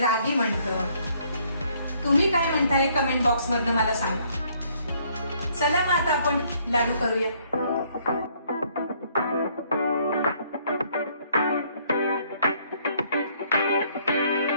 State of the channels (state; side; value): inverted; both; correlation -0.65